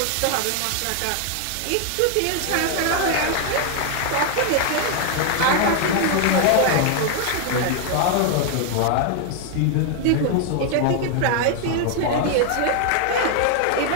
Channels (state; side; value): different; both; correlation 0.00